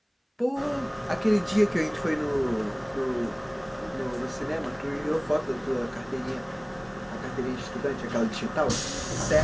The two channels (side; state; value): both; identical; correlation 1.00